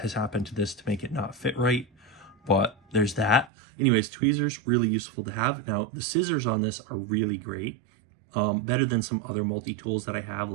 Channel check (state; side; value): drops out; left; at 3.5 s